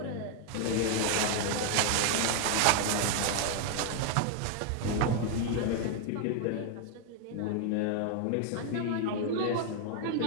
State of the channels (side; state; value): both; different; correlation 0.00